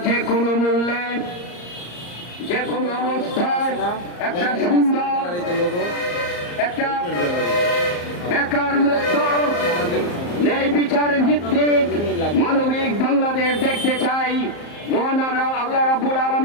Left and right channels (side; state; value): right; late; 34 ms